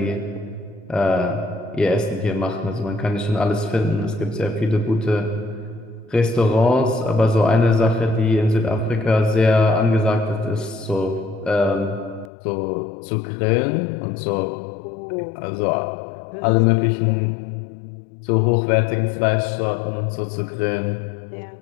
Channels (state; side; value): drops out; right; at 12.3 s